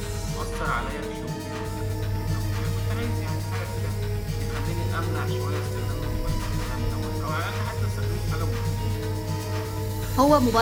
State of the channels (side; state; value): both; identical; correlation 1.00